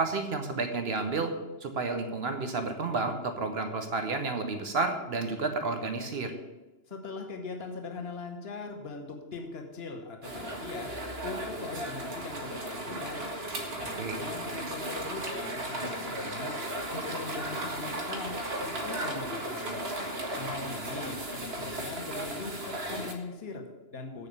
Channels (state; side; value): late; left; 2.9 ms